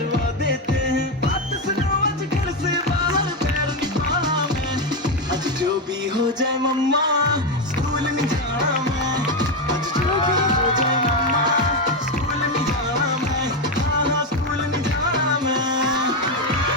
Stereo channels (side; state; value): both; normal; correlation 0.09